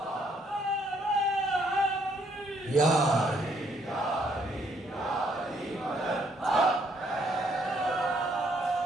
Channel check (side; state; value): both; normal; correlation 0.69